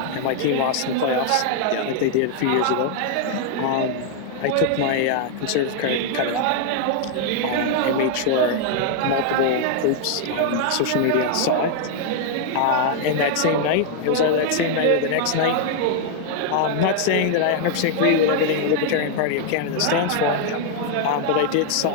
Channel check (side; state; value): both; different; correlation 0.00